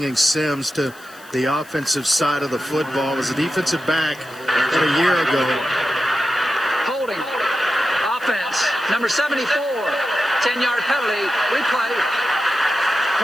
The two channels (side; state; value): left; noise; hiss, 23 dB below the sound